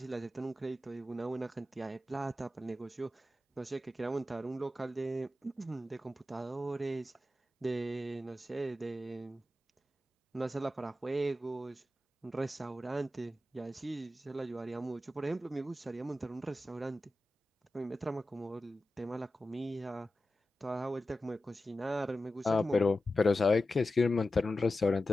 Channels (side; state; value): both; normal; correlation 0.92